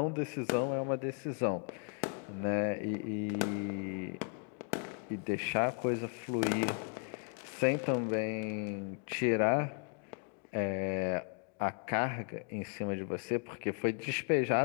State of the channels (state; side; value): quieter; right; 39.8 dB